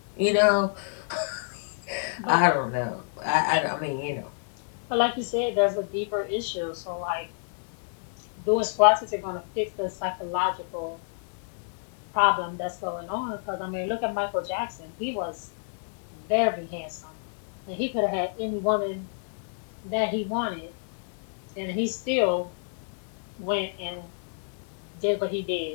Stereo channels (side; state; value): right; silent; 57 dB below the other